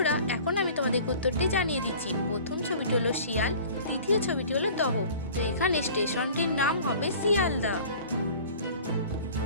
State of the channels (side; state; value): both; inverted; correlation -0.45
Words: এখন আমি তোমাদের উত্তরটি জানিয়ে দিচ্ছি। প্রথম ছবিটি হলো শিয়াল, দ্বিতীয় ছবিটি হলো দহ। তো এখানে স্টেশনটির নাম হবে শিয়ালদা।